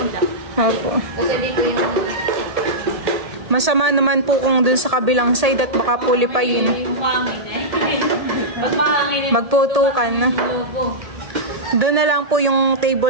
Opo. Kasi dito yung Masama naman po kung dun sa kabilang side at baka pulipayin. yung hangin Pag mahangin Magputukan na. lobo. Doon na lang po yung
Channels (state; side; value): late; left; 1.8 ms